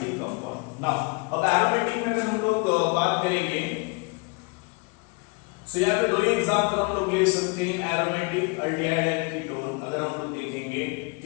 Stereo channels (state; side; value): quieter; right; 30.1 dB